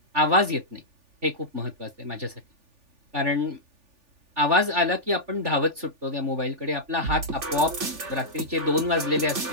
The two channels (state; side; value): late; left; 3.4 ms